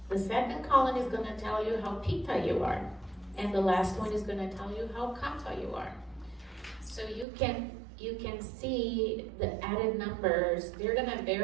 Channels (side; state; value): left; drops out; at 7.2 s